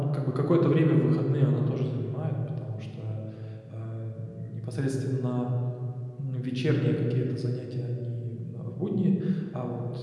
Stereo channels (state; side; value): identical; both; correlation 1.00